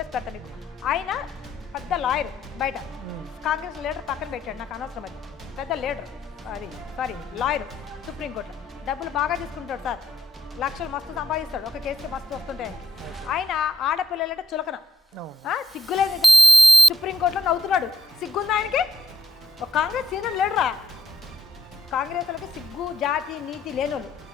పెడతా మీకు. ఆయన పెద్ద లాయర్, బయట కాంగ్రెస్ లీడర్ పక్కన పెట్టాడు, నాకు అనవసరం అది. పెద్ద లీడర్, లాయర్ సుప్రీంకోర్టులో డబ్బులు బాగా తీసుకుంటాడు సార్, లక్షలు మస్తు సంపాదిస్తాడు, ఒక కేసుకి మస్తు వస్తుంటాయి. ఆయన ఆడపిల్లలంటే చులకన, సిగ్గులేదు. సుప్రీంకోర్టులో నవ్వుతున్నాడు, సిగ్గుంది ఆయనకి. ఒక కాంగ్రెస్ సీనియర్ లీడరా. కాంగ్రెస్ వాళ్ళకి సిగ్గు జాతి నీతి లేనోళ్ళు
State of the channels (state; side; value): normal; both; correlation 0.76